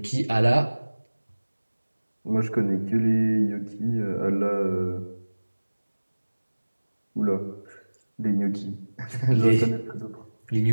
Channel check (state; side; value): inverted; both; correlation -1.00